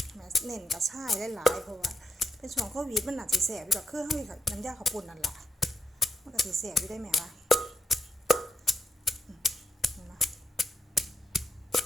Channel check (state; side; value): normal; both; correlation 0.81